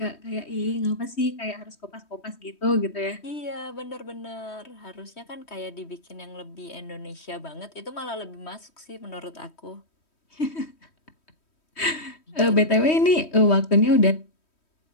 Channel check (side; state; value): right; late; 3.1 ms